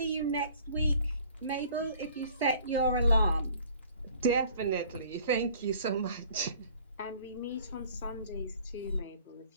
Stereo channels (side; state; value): both; inverted; correlation -0.52